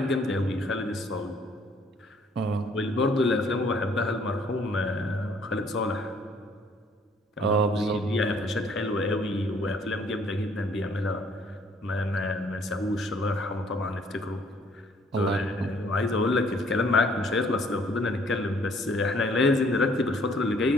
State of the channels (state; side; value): normal; both; correlation 0.62